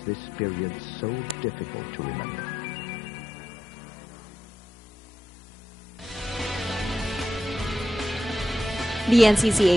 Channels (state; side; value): normal; both; correlation 0.86